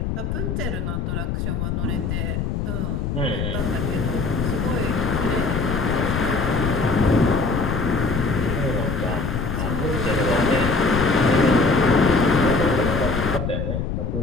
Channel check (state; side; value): noise; left; rumble, 2 dB below the sound